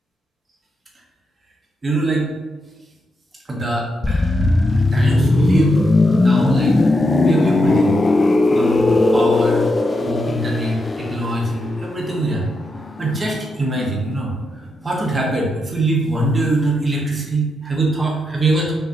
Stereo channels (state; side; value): normal; both; correlation 0.83